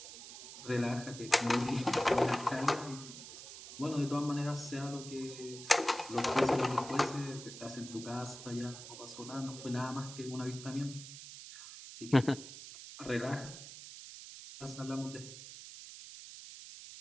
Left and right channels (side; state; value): right; noise; hiss, 13 dB below the sound